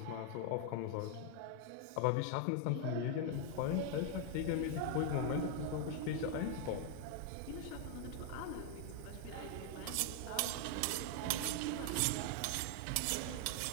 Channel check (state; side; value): different; both; correlation 0.00